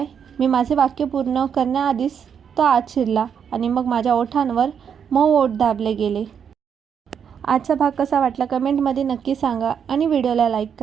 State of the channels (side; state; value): left; quieter; 7.6 dB